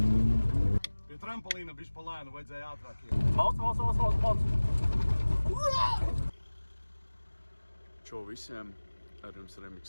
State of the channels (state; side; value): inverted; both; correlation -1.00